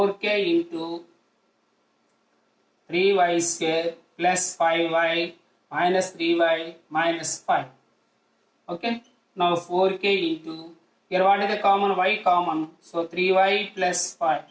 into 3y square plus 5y minus 3y minus 5. Okay. Now 4k into, here what is the common? Y common. So 3y plus 5.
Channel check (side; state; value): both; identical; correlation 1.00